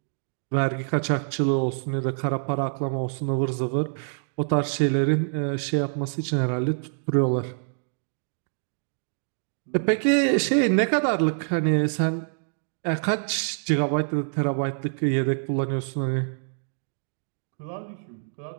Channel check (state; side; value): silent; left; digital silence